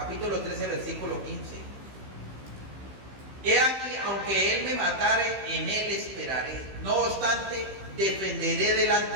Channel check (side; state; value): left; late; 15 ms